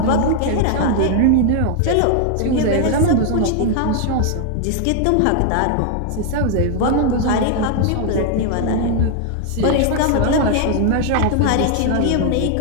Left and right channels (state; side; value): different; both; correlation 0.00